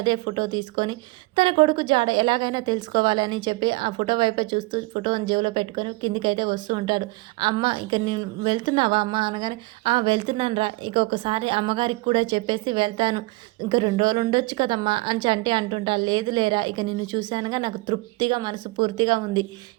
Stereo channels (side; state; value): left; quieter; 23.0 dB